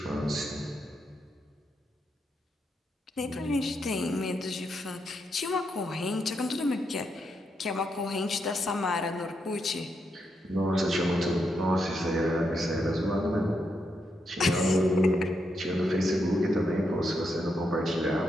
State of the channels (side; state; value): both; normal; correlation 0.81